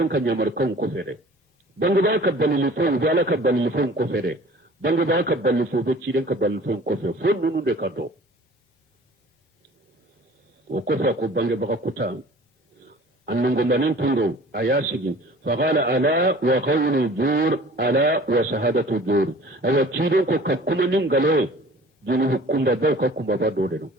ka nyamaru kan ko fere bange baga ka balilifon be ala ka balilifon ko fere bange baga ka balilifo be ciden ka balilifon ko fere fo nunu de ka do o ko fa ko bange baga kuta annango manen tundo ayasigi faqala ala wa qawlu jur ala wa shahadatu jur awa ciden ko kakkuma nin galoye junubu kumba baw ka kumba ba dode do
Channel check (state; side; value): normal; both; correlation 0.46